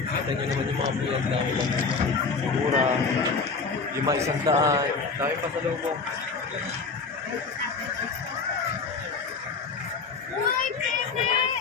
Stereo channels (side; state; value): right; quieter; 4.7 dB